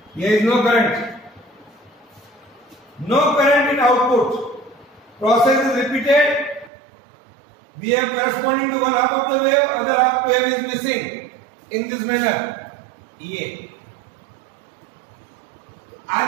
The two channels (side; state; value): left; drops out; at 6.7 s